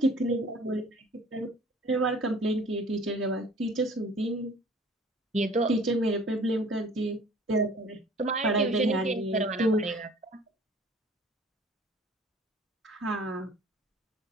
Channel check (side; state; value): both; normal; correlation 0.50